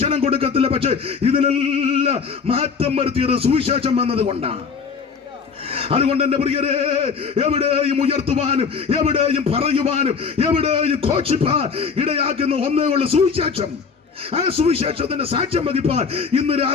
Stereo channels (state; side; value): quieter; right; 5.7 dB